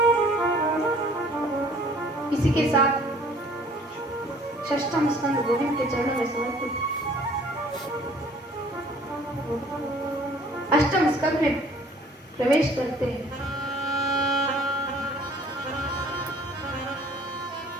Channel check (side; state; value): both; normal; correlation 0.54